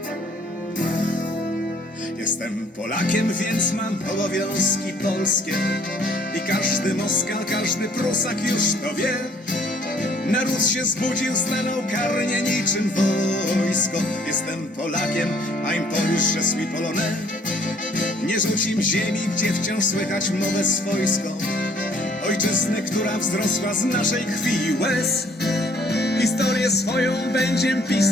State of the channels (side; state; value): both; normal; correlation 0.61